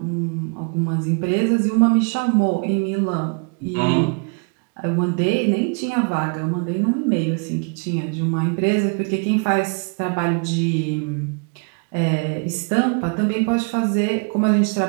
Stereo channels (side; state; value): left; quieter; 37.6 dB